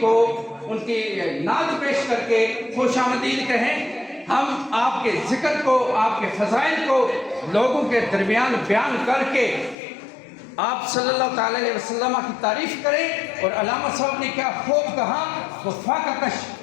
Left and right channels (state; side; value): drops out; right; at 9.8 s